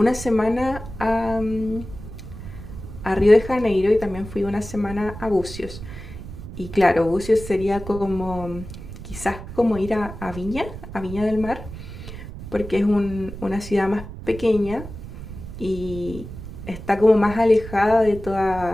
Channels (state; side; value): noise; right; rumble, 12 dB below the sound